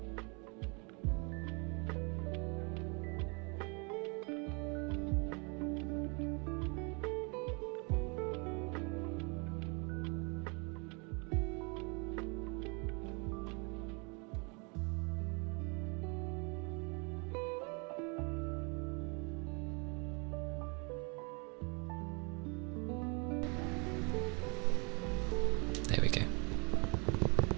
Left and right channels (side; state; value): left; quieter; 32.3 dB